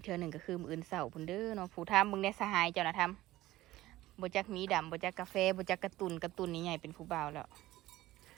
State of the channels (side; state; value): left; quieter; 16.5 dB